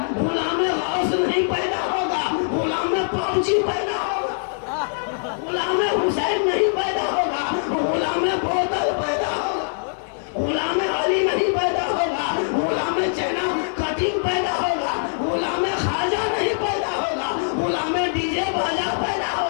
गुलाम में हाउस नहीं पैदा होगा, गुलाम में पबजी पैदा होगा, गुलाम में हुसैन नहीं पैदा होगा, गुलाम में बोतल पैदा होगा, गुलाम में अली नहीं पैदा होगा, गुलाम में चैना कटिंग पैदा होगा, गुलाम में खाजा नहीं पैदा होगा, गुलाम में डीजे बाजा पैदा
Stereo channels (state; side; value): silent; right; digital silence